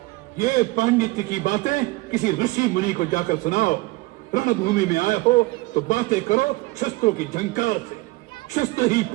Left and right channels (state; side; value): quieter; left; 21.8 dB